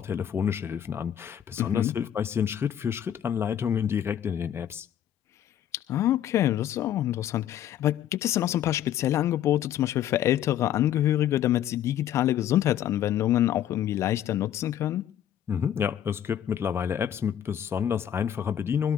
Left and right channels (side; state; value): right; quieter; 10.5 dB